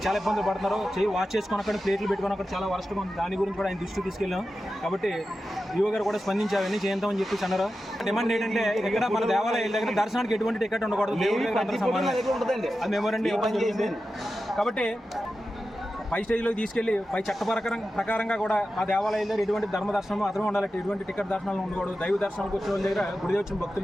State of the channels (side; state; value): both; normal; correlation 0.92